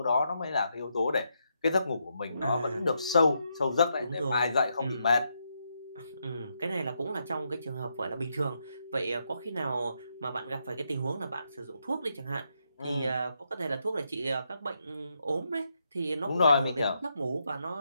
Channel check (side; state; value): both; inverted; correlation -0.80